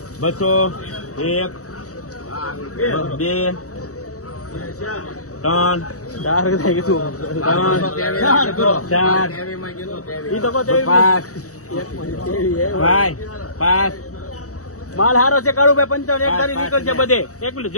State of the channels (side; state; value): right; late; 0.65 ms